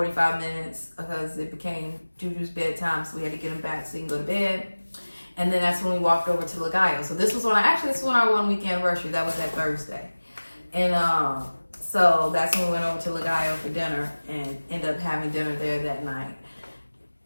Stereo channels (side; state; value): both; inverted; correlation -1.00